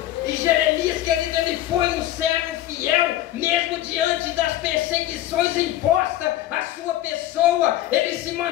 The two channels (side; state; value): right; quieter; 13.8 dB